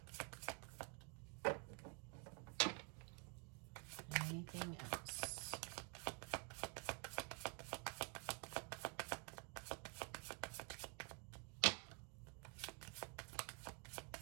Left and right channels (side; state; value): left; quieter; 36.8 dB